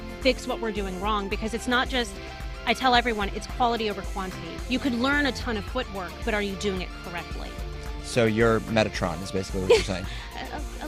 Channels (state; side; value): identical; both; correlation 1.00